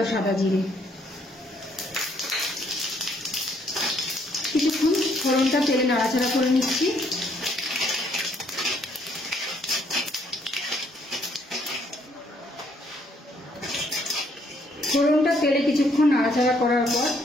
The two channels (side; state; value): both; normal; correlation 0.68